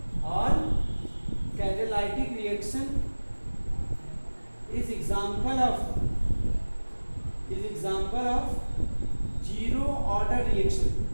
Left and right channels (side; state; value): both; inverted; correlation -1.00